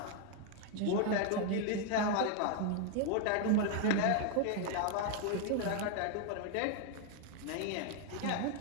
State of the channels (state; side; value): different; both; correlation 0.01